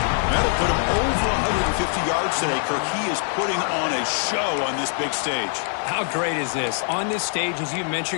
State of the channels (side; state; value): right; silent; 58 dB below the other